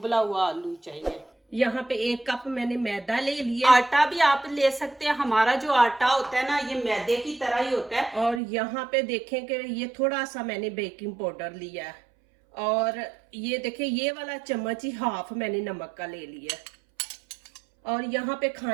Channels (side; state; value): left; drops out; at 8.4 s